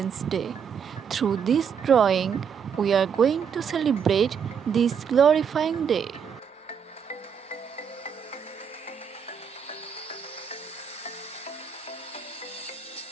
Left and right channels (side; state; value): left; quieter; 7.1 dB